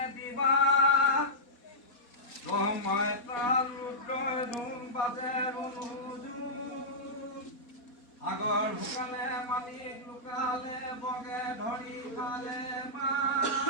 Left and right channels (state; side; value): late; right; 4.2 ms